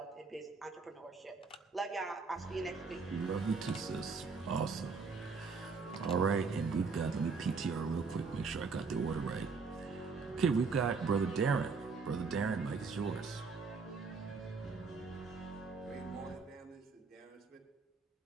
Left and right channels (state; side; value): quieter; left; 4.7 dB